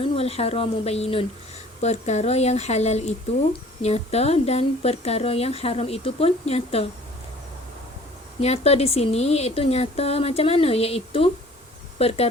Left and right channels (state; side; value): normal; both; correlation 0.51